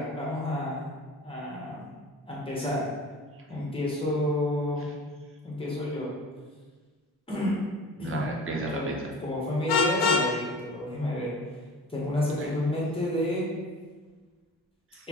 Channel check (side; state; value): both; normal; correlation 0.39